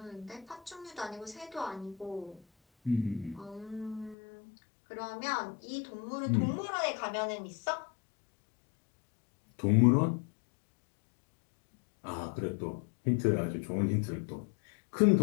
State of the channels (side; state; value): right; drops out; at 4.2 s